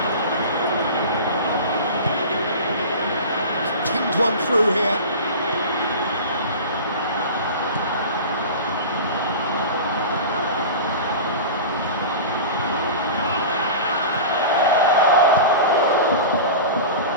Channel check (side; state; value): both; inverted; correlation -0.32